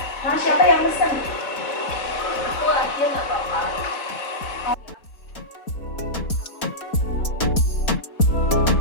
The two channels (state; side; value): late; right; 4.2 ms